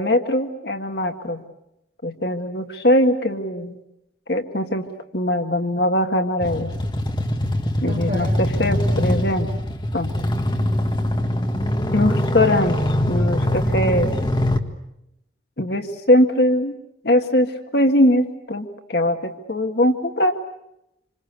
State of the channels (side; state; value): both; normal; correlation 0.41